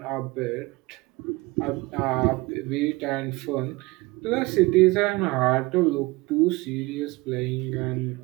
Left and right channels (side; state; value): left; quieter; 22.8 dB